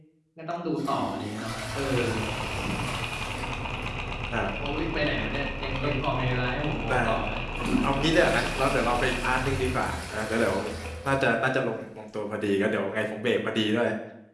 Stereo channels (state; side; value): identical; both; correlation 1.00